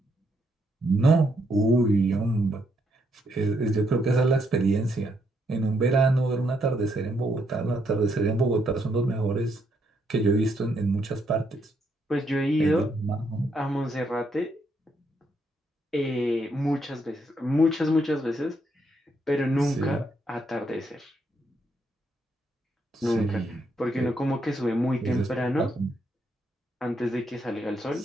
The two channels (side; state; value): both; normal; correlation 0.75